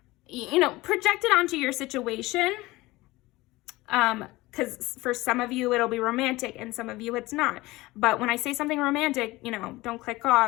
you know, project it onto your situation. Because for some of you, it'll be romantic and some of you it's not. But when I say something romantic, you know, don't click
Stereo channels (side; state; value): right; quieter; 19.8 dB